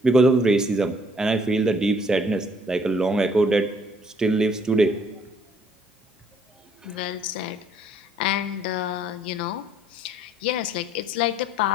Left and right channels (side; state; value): both; normal; correlation 0.62